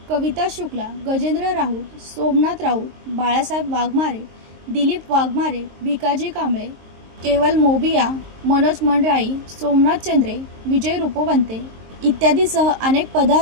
कविता शुक्ला, गजेंद्र राऊत, सोमनाथ राऊत, बाळासाहेब वाघमारे, दिलीप वाघमारे, भिकाजी कांबळे, केवल मोबिया, मनोज मंडराई, सोमनाथ चंद्रे, विजय रूपवंते इत्यादीसह अनेक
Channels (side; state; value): left; late; 23 ms